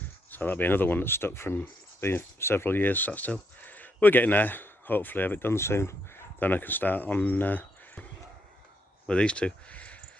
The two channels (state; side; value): normal; both; correlation 0.77